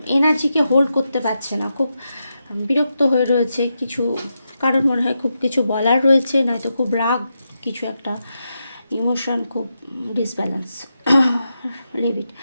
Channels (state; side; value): inverted; both; correlation -0.86